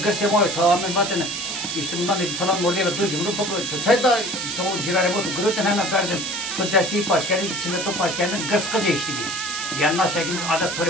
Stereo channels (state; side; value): noise; right; hiss, 4 dB below the sound